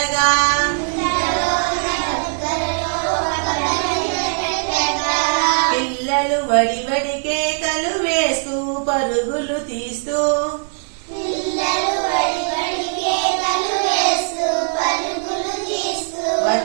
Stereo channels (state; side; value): silent; left; 66 dB below the other